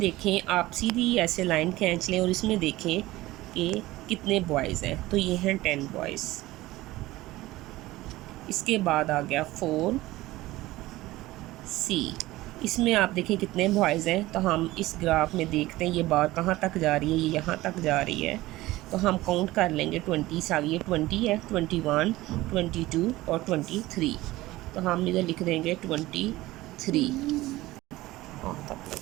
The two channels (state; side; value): quieter; left; 17.9 dB